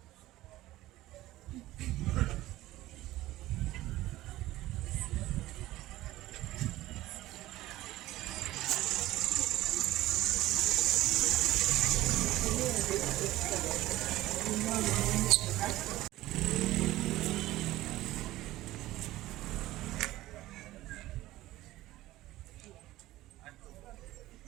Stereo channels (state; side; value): quieter; left; 16.4 dB